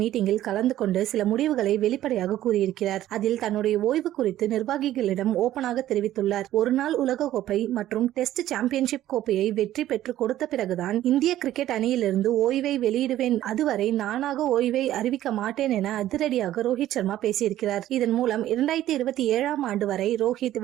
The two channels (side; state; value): left; quieter; 13.3 dB